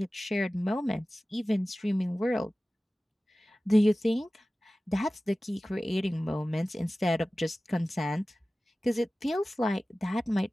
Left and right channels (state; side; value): normal; both; correlation 0.96